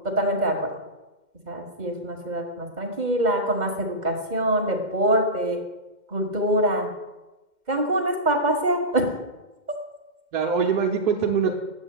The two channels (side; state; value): left; late; 2.1 ms